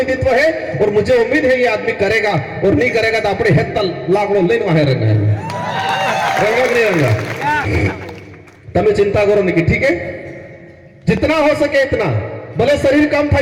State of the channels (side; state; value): both; identical; correlation 1.00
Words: है और मुझे उम्मीद है ये आदमी करेगा, और नहीं करेगा तो अपने हेत लाकड़ो लेन वहां रंगा नहीं रंगा। तब चिंता करो नहीं, ठीक है, जितना हो सके इतना, भले शरीर कम था,